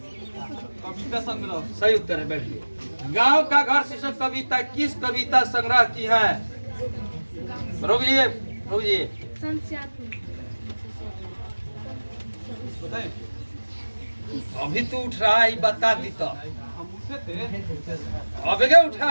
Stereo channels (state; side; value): inverted; both; correlation -1.00